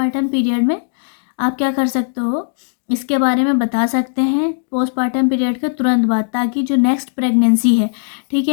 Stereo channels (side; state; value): right; silent; digital silence